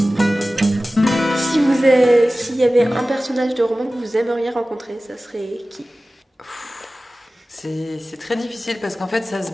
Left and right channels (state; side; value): normal; both; correlation 0.96